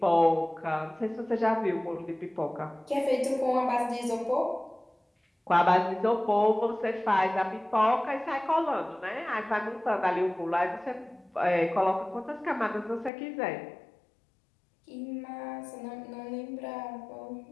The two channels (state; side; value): drops out; right; at 13.1 s